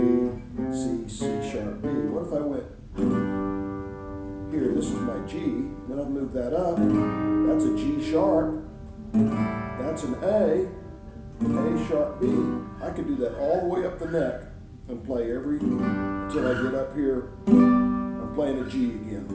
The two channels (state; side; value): identical; both; correlation 1.00